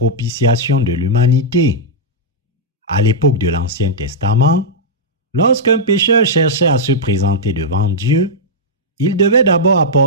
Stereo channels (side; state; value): both; normal; correlation -0.07